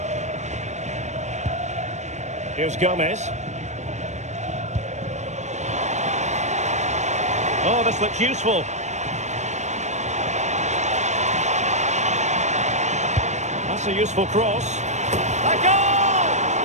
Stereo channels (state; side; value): late; left; 0.34 ms